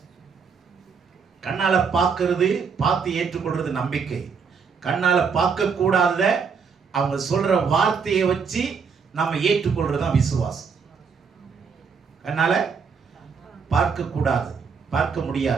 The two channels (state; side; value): quieter; left; 5.8 dB